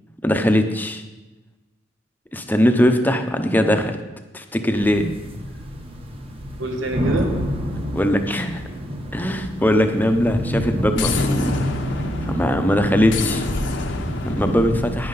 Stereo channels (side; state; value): both; normal; correlation 0.81